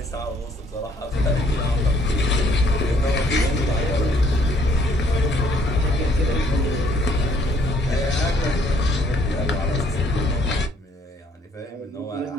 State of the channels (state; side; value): normal; both; correlation 0.64